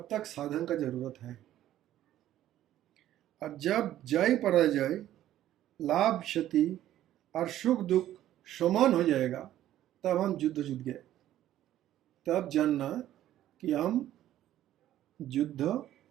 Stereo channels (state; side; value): quieter; left; 12.8 dB